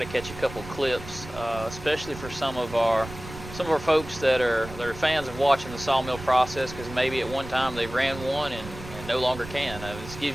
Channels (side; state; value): right; noise; rumble, 13 dB below the sound